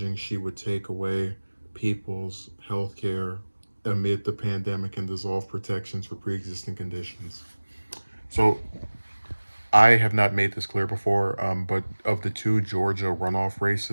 she would take away people's health care amid the pandemic and dissolve protections for pre-existing conditions. So I have not made this clear before, but of the two Georgia runoff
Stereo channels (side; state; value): both; inverted; correlation -1.00